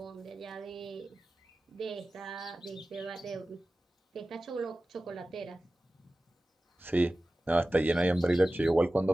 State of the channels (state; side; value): normal; both; correlation 0.96